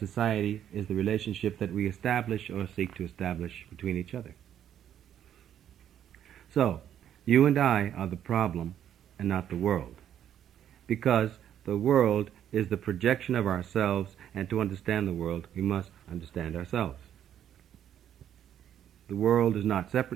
is the relationship that we establish or seek to establish between each other. So, you and I are the problem and not the world, because the world is the projection of ourselves, and to understand the world, we must understand ourselves. The world is not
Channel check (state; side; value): quieter; left; 10.2 dB